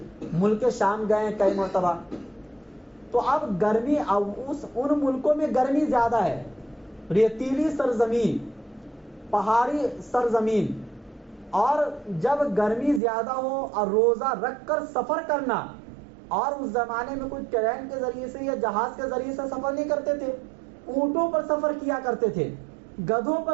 ملک شام گئے کئی مرتبہ. تو اب گرمی، ان ملکوں میں گرمی زیادہ ہے، ریتیلی سرزمین، پہاڑی سرزمین، اور جب گرمی زیادہ ہو اور روزہ رکھ کر سفر کرنا، اور اس زمانے میں کوئی ٹرین کے ذریعے سے یا جہاز کے ذریعے سے سفر نہیں کرتے تھے، اونٹوں پر سفر کیا کرتے تھے، گدھوں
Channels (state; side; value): drops out; left; at 13.0 s